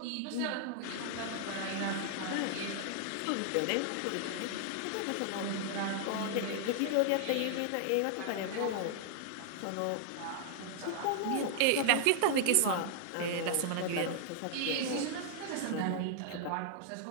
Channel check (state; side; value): different; both; correlation 0.00